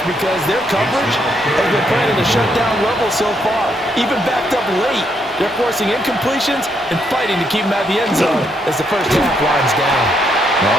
because their coverage has been playing at a shutdown level so far. Even backed up late, they're forcing incompletions and fighting to keep them at the end zone as the first half winds down.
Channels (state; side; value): normal; both; correlation 0.75